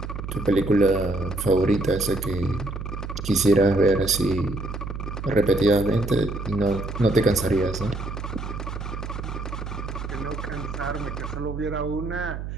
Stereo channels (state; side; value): noise; right; hum, 7 dB below the sound